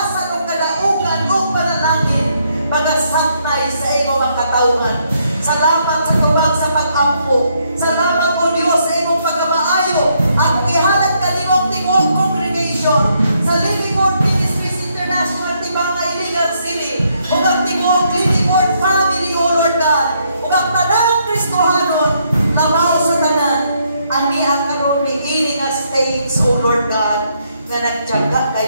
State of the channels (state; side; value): inverted; both; correlation -0.74